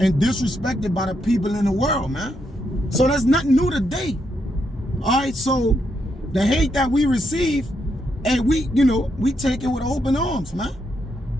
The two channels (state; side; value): normal; both; correlation 0.79